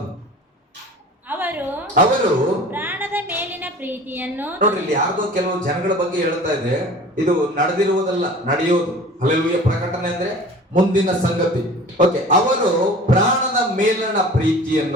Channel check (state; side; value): normal; both; correlation 0.42